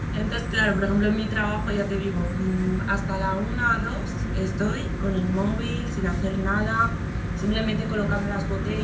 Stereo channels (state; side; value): identical; both; correlation 1.00